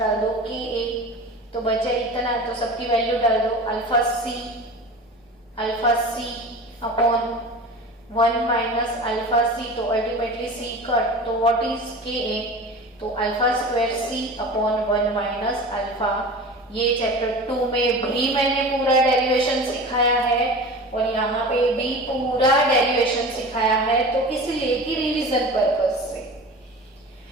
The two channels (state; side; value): normal; both; correlation 0.35